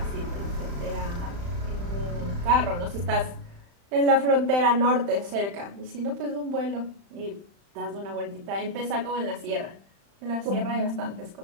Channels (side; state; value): left; late; 35 ms